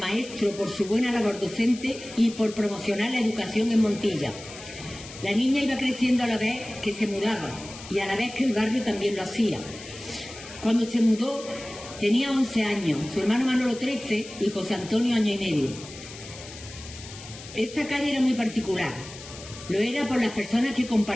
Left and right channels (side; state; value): left; noise; hiss, 15 dB below the sound